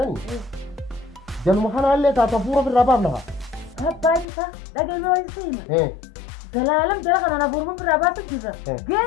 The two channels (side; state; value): right; drops out; at 4.2 s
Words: ni. Jangan makan alle tata pura berapa nak? Apa itu? Lagi orang sini. Dalam jalan kan anak burung berapa tu juga. Dia